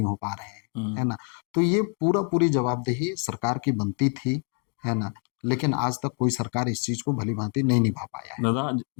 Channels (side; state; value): right; quieter; 39.7 dB